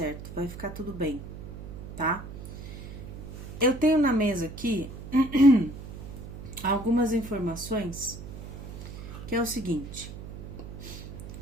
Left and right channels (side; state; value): right; noise; hum, 11 dB below the sound